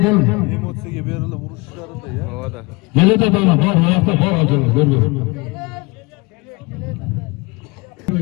Emosiyaga berildi, uruşlarida ya. Havada. Geledi adamlar, var, ayakta var Abdallaka, görmüyor.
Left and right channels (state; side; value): quieter; right; 26.2 dB